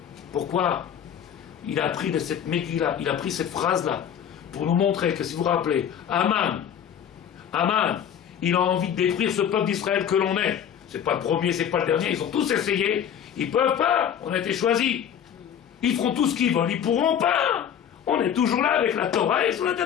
Pourquoi? Il a appris de cette Megillah, il a pris cette phrase-là, pour nous montrer que, si vous vous rappelez, Aman, il a envie de détruire ce peuple d'Israël que l'on est. C'est pas le premier, c'est pas le dernier, ils ont tous essayé. Ils peuvent pas, on a été choisis. Ils feront tout ce qu'ils veulent, ils pourront pas. On est toujours là avec la Torah et sur la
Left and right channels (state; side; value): quieter; right; 8.9 dB